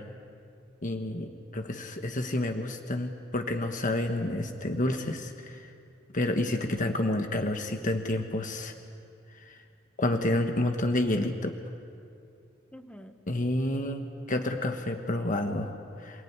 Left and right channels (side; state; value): both; normal; correlation 0.63